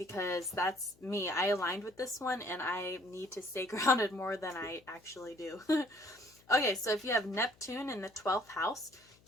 that's me. I aligned with this one, and I need to stay grounded more than I actually do. Okay, so if you have Neptune in the 12th house,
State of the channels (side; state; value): left; noise; hum, 30 dB below the sound